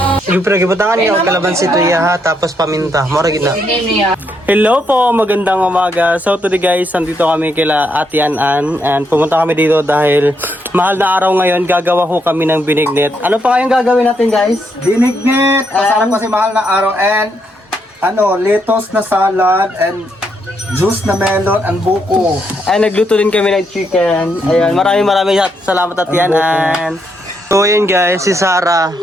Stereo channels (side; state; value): both; normal; correlation 0.77